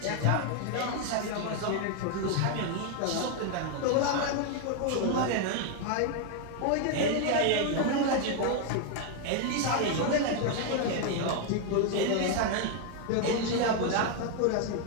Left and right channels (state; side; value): different; both; correlation 0.01